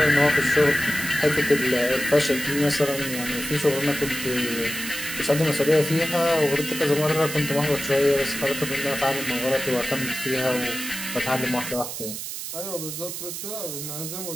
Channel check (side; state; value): right; noise; hiss, 7 dB below the sound